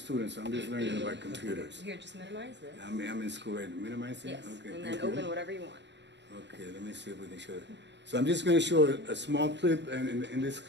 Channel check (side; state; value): left; late; 0.52 ms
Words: so I'm just learning about computers. Here, just minimize this. I'm in school right now. Minimize it? Yes, okay, and then open whatever you want. Okay, let me see if we can show it. So I'm just going to show a small clip, and in this